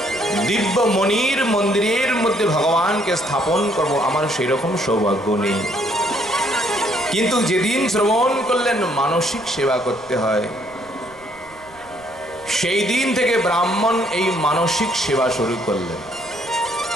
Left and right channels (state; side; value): noise; right; rumble, 26 dB below the sound